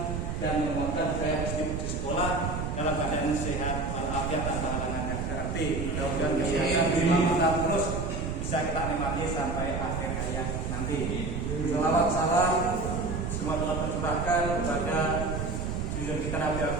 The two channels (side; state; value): right; noise; rumble, 3 dB below the sound